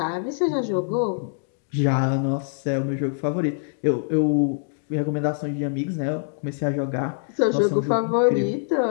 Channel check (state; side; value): silent; right; digital silence